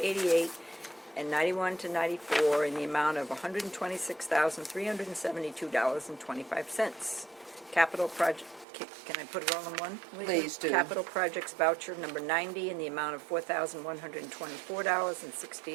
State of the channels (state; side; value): drops out; left; at 8.7 s